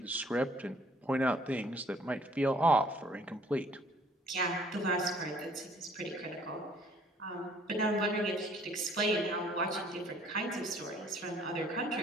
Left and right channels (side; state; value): both; normal; correlation 0.59